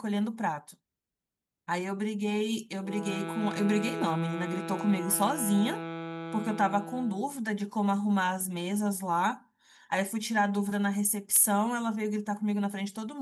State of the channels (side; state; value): both; identical; correlation 1.00